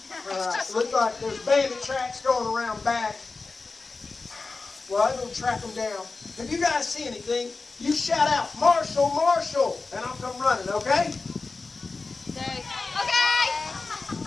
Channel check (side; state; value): right; quieter; 3.9 dB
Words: All right. Looks like there's bandit tracks going around back. Well, I'm going to track them down. If you guys see anything, you shout out, Marshal, Marshal, and I'll come running, okay? Okay.